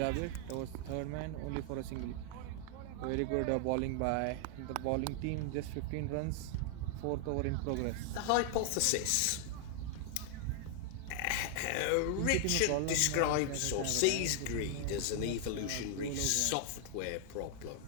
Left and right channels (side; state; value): both; different; correlation 0.00